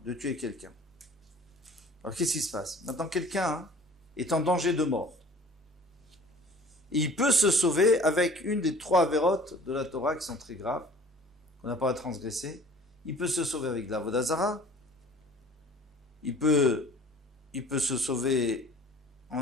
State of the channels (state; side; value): normal; both; correlation 0.49